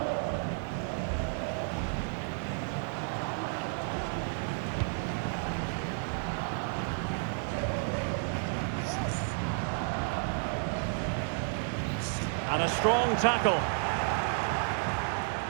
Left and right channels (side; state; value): left; silent; 57 dB below the other